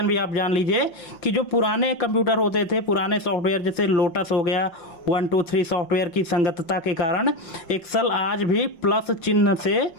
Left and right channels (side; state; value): right; late; 5.8 ms